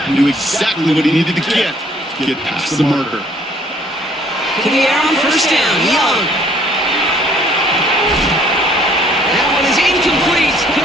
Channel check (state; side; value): normal; both; correlation 0.60